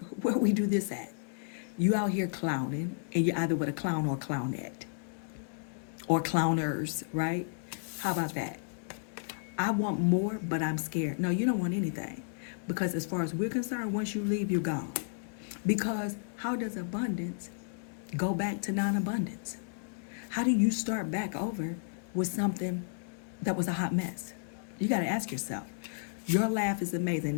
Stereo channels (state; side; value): silent; right; 56 dB below the other